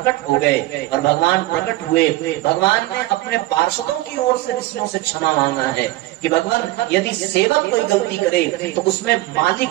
हो गए। और भगवान प्रकट हुए, भगवान ने अपने पार्षदों की ओर से ऋषियों से क्षमा मांगा है कि भगवान यदि सेवक कोई गलती करे तो उसमें मालिक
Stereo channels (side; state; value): left; quieter; 17.9 dB